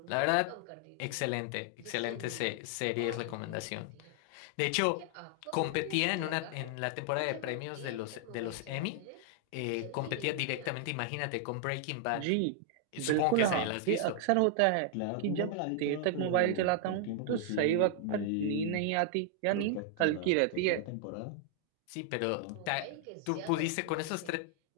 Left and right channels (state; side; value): different; both; correlation 0.00